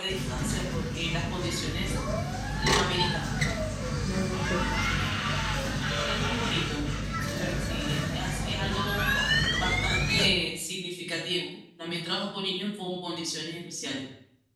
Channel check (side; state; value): both; identical; correlation 1.00